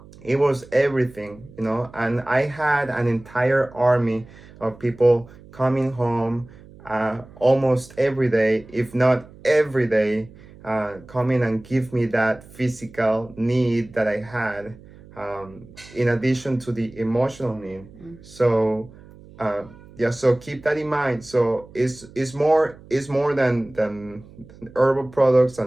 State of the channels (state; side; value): noise; right; hum, 21 dB below the sound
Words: everything, and I had an entire army of people coming home almost every day, if not every day, coming and give me that physical need that I had, in addition to the emotional need. So so keep that in mind. So it's more than herbal products